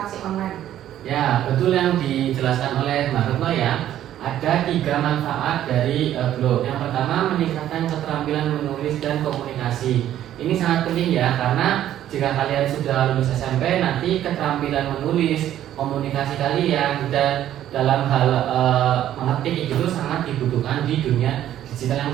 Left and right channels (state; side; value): quieter; left; 11.9 dB